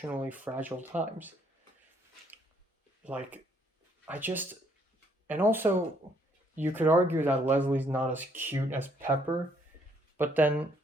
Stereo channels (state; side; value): normal; both; correlation 0.68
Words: fragile times. Like, and also, you could argue that Leslie's not as cute as Pepper, but then,